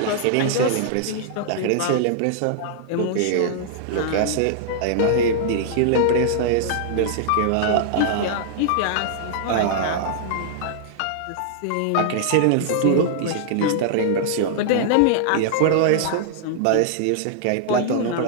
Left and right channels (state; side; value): different; both; correlation -0.01